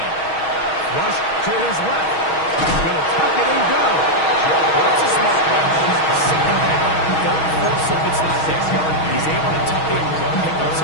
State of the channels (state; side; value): late; right; 6.3 ms